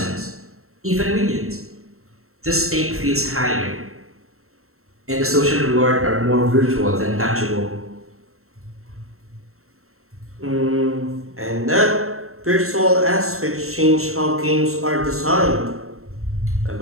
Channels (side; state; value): left; late; 0.63 ms